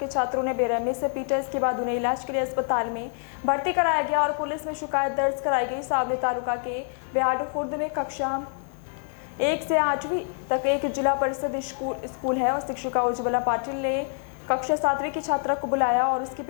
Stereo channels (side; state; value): right; silent; 58 dB below the other